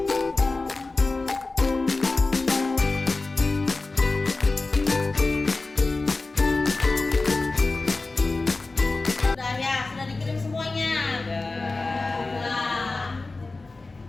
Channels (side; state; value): right; quieter; 3.5 dB